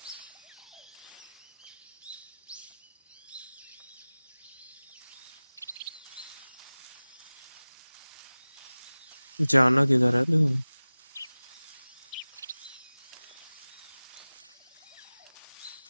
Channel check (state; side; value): inverted; both; correlation -0.98